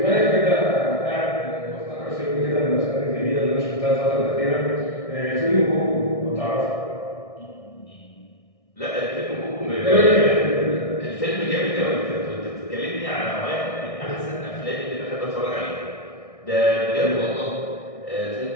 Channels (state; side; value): late; right; 1.6 ms